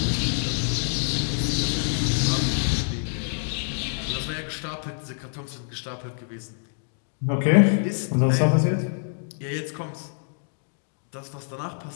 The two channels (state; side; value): silent; right; digital silence